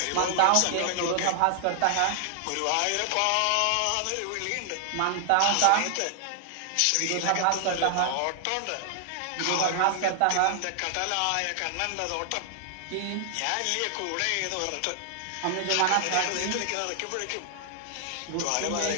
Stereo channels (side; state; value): both; different; correlation 0.00